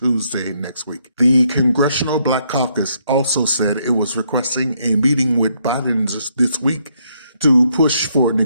next week. The Congressional Black Caucus also said it was requesting a meeting with Biden this week to push for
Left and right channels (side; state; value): both; inverted; correlation -0.73